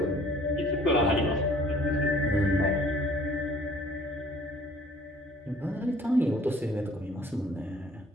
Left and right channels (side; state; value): both; normal; correlation 0.54